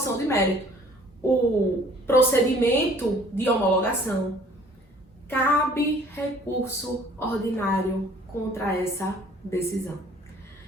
de mérito, o procedimento de homologação, cabe recurso ordinário contra essa decisão.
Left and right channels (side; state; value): both; normal; correlation 0.55